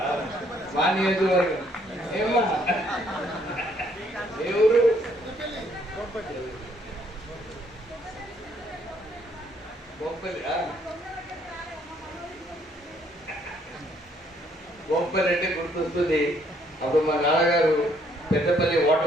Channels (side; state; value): both; normal; correlation 0.67